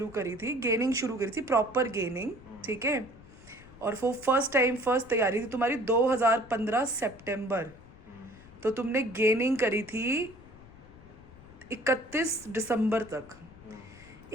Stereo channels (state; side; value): noise; left; rumble, 22 dB below the sound